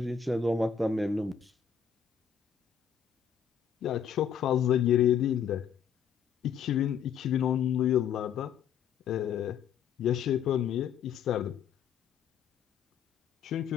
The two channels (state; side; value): quieter; right; 7.8 dB